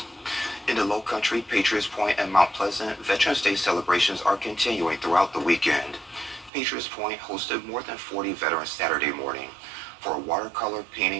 In the Low Country, Patriots Point, and Mount Pleasant, Veterans Day celebrations are continuing throughout the weekend. Patriots Point hosted more than 40 veterans Saturday morning for a watercolor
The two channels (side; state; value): left; drops out; at 6.5 s